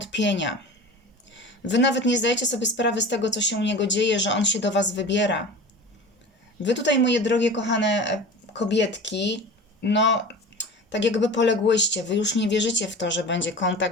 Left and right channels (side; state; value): both; normal; correlation 0.36